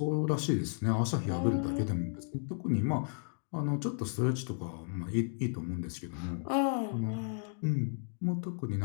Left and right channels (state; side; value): silent; right; 55 dB below the other